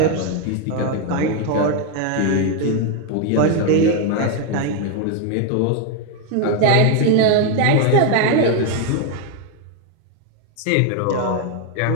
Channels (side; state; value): both; different; correlation 0.01